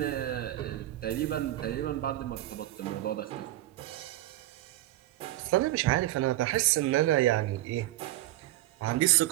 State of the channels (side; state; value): left; quieter; 15.6 dB